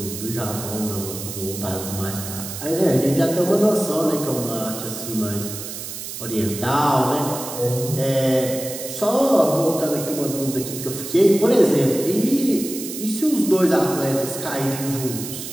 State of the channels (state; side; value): noise; right; hiss, 9 dB below the sound